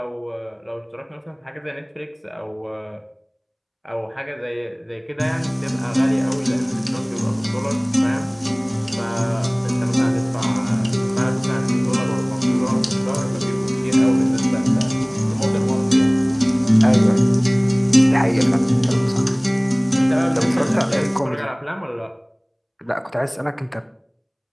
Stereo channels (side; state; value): both; identical; correlation 1.00